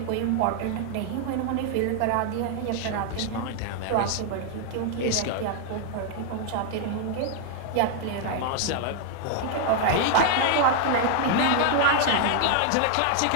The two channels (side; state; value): both; different; correlation 0.00